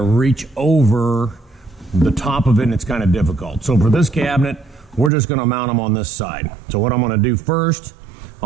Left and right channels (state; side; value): drops out; left; at 5.1 s